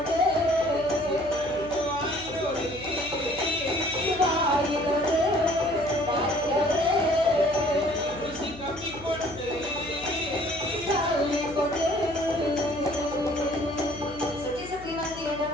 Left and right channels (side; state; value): left; noise; hum, 17 dB below the sound